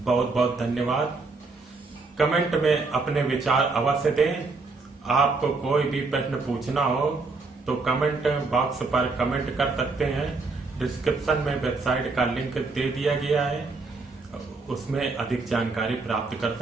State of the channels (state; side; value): quieter; left; 3.8 dB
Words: बहुत बहुत धन्यवाद। कमेंट में अपने विचार अवश्य दें। आपको कोई भी प्रश्न पूछना हो तो कमेंट बॉक्स पर कमेंट कर सकते हैं। डिस्क्रिप्शन में वेबसाइट का लिंक दे दिया गया है, उसमें अधिक जानकारी प्राप्त कर